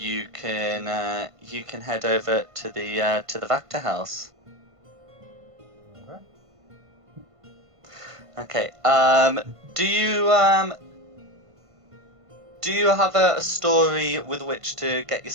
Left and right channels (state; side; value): late; left; 1.5 ms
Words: can head over to the Vactor house. Okay. Okay. Do you have a story with which to get